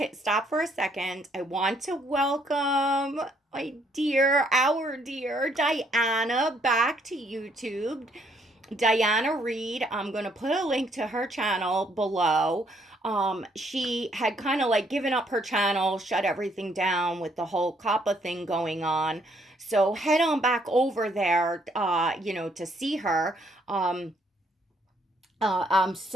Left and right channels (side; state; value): both; normal; correlation 0.68